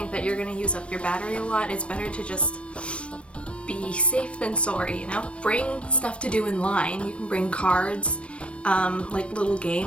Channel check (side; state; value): right; late; 0.060 ms